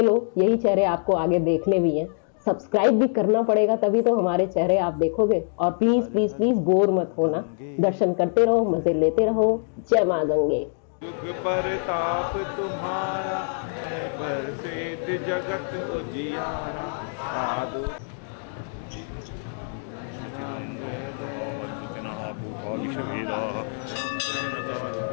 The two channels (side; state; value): right; silent; digital silence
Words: लो, यही चेहरे आपको आगे देखने भी हैं। सब्सक्राइब भी करना पड़ेगा, तभी तो हमारे चेहरे आप देखोगे। और प्लीज प्लीज प्लीज बोर मत होना, दर्शन करते रहो, मजे लेते रहो। जय माँ गंगे। युग परताप तुम्हारा है, बरसेत जगत उजियारा। साधु